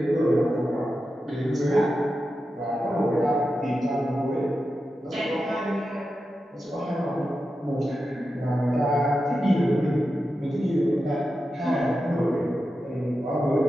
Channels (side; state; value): both; normal; correlation 0.90